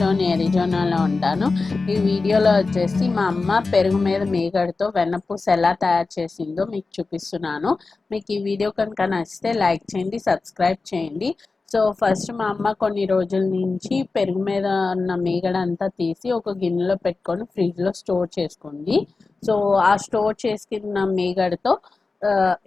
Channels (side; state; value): right; quieter; 3.9 dB